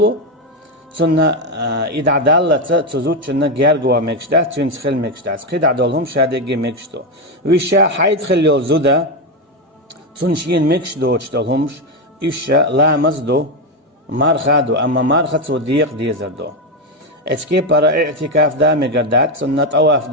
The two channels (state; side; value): normal; both; correlation 0.09